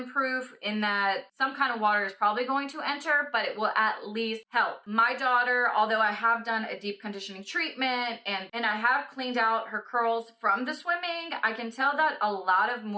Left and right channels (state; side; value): identical; both; correlation 1.00